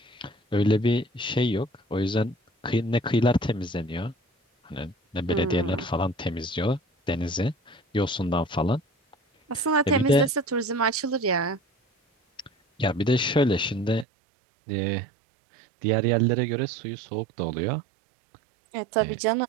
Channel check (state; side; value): drops out; left; at 14.1 s